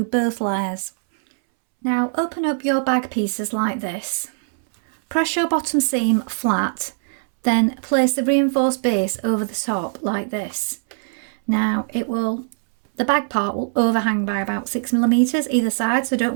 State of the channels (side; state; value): left; silent; 65 dB below the other